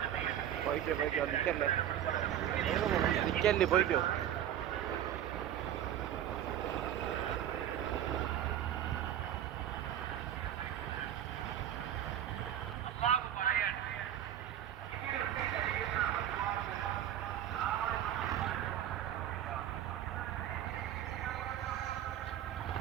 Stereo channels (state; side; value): quieter; left; 11.0 dB